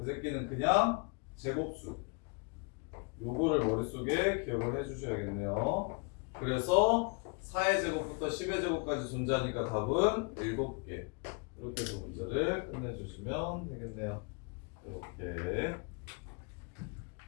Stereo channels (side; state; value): right; quieter; 34.0 dB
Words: 새끼는 그냥 제곱수. 요거를 머릿속에 기억을 해주셔야겠네요. 그래서 4의 제곱부터 10의 제곱까지 존재하니까 답은 7개. 이렇게 해서 문제를 끝내주시면 되겠네요. 이렇게.